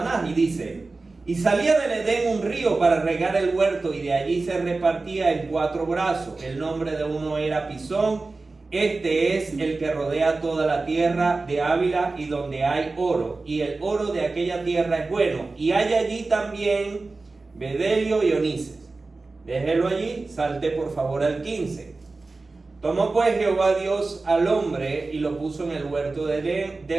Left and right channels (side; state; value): left; quieter; 3.6 dB